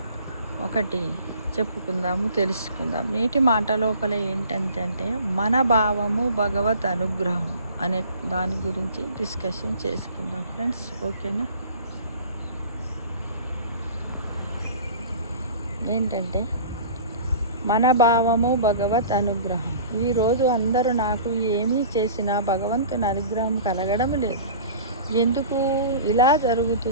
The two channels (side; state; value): both; inverted; correlation -0.43